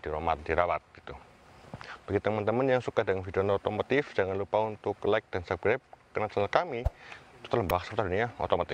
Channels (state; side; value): identical; both; correlation 1.00